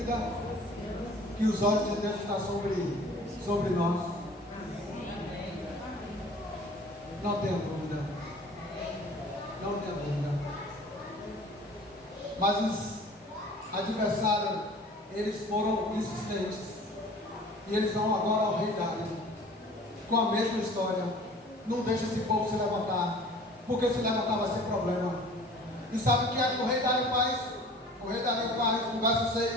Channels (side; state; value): both; normal; correlation 0.47